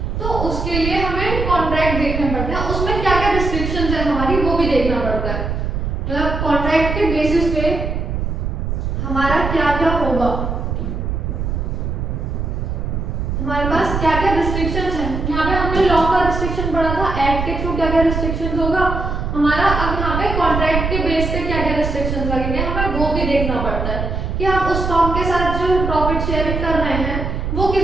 तो उसके लिए हमें कॉन्ट्रैक्ट देखने पड़ते हैं, उसमें क्या क्या रिस्ट्रिक्शंस है हमारी वो भी देखना पड़ता है। मतलब कॉन्ट्रैक्ट के बेसिस पे हमारा क्या क्या होगा, हमारे पास क्या क्या रिस्ट्रिक्शंस हैं। यहाँ पे हमने लॉ का रिस्ट्रिक्शन पढ़ा था, एक्ट के थ्रू क्या क्या रिस्ट्रिक्शंस होगा हमारा। अब यहाँ पे कॉन्ट्रैक्ट के बेस पे क्या क्या रिस्ट्रिक्शंस लगेंगे हमें वो भी देखना पड़ता है कि आप उस फर्म के साथ जो प्रॉफिट शेयरिंग कर रहे हैं वो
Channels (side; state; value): right; noise; rumble, 2 dB below the sound